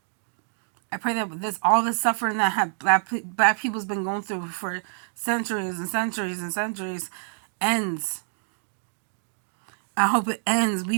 pray that all the suffering that black people's been going through for centuries and centuries and centuries ends. I hope it ends.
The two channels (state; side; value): silent; left; digital silence